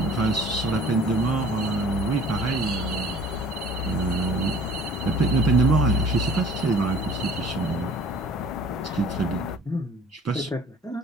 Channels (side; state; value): both; normal; correlation 0.49